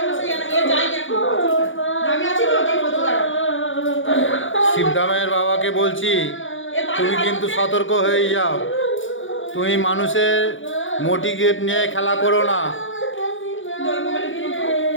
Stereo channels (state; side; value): late; right; 0.57 ms